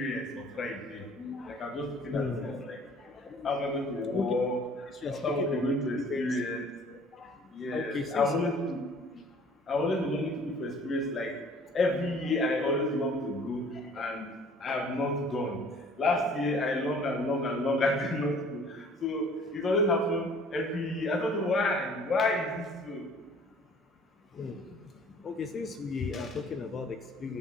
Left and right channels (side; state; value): both; normal; correlation 0.53